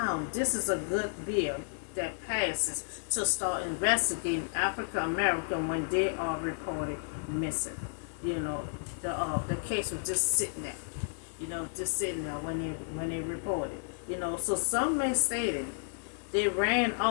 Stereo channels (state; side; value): silent; right; digital silence